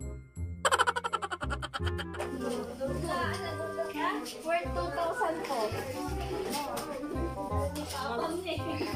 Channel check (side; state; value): both; identical; correlation 1.00